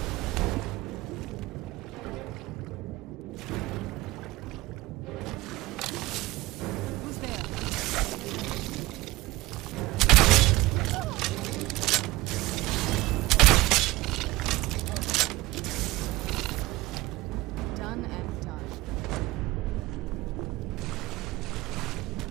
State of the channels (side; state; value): left; quieter; 19.3 dB